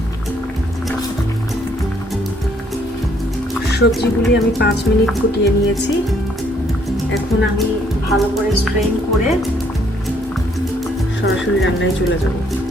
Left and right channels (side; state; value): both; normal; correlation 0.67